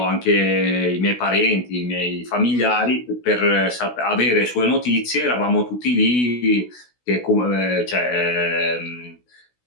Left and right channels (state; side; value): late; right; 16 ms